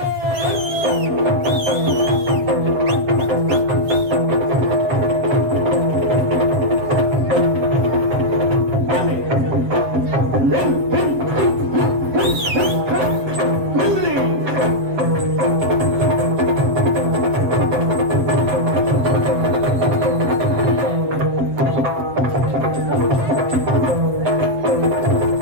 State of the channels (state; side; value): late; left; 7.6 ms